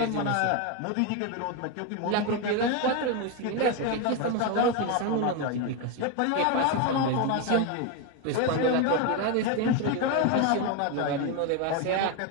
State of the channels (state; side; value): different; both; correlation 0.02